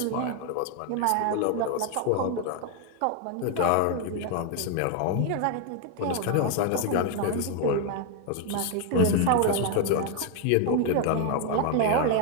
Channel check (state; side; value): different; both; correlation 0.01